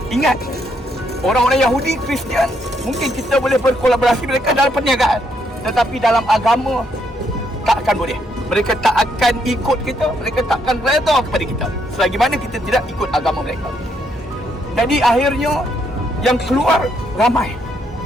Ingat, orang-orang Yahudi, Kristian, mungkin kita boleh berkolaborasi mereka dalam perniagaan, tetapi dalam agama tak akan boleh. Mereka tak akan ikut kita, mereka tak akan redha kepada kita selagi mana kita tidak ikut agama mereka. Jadi akhirnya yang keluar ramai.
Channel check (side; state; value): both; normal; correlation 0.74